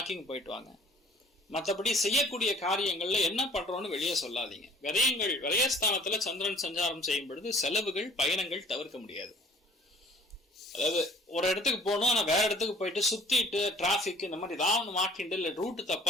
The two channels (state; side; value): normal; both; correlation 0.53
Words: போயிட்டு வாங்க. மற்றபடி செய்யக்கூடிய காரியங்கள்ல என்ன பண்றோம்னு வெளியே சொல்லாதீங்க. விரயங்கள் விரயஸ்தானத்துல சந்திரன் சஞ்சாரம் செய்யும் பொழுது செலவுகள் பயணங்கள் தவிர்க்க முடியாது. அதாவது ஒரு இடத்துக்கு போகணும், ஆனா வேற இடத்துக்கு போயிட்டு சுத்திட்டு டிராபிக் இந்த மாதிரி ஏதாவது மாட்டிண்டு இல்லை ரூட்டு